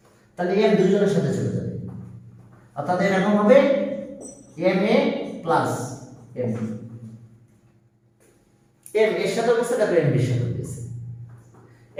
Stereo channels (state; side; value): identical; both; correlation 1.00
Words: তাহলে m দুইজনের সাথে চলে যাবে, অর্থাৎ এরকম হবে m a plus m m এর সাথে বসে তারপরে m এর সাথে বসে,